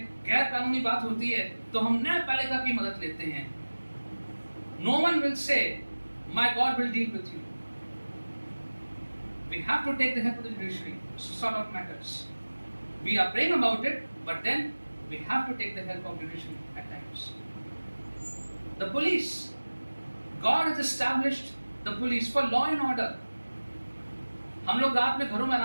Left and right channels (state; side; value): inverted; both; correlation -1.00